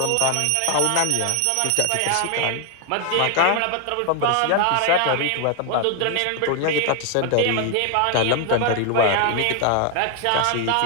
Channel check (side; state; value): both; different; correlation 0.00